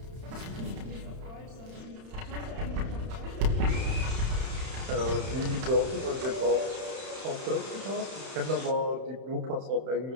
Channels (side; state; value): left; late; 31 ms